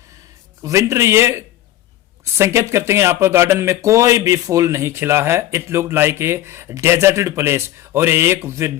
winter ये संकेत करते हैं यहाँ पर गार्डन में कोई भी फूल नहीं खिला है। It look like a deserted place, और एक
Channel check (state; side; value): quieter; right; 13.7 dB